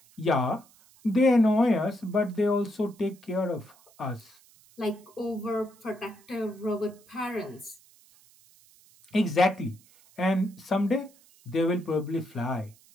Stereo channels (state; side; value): noise; right; hiss, 28 dB below the sound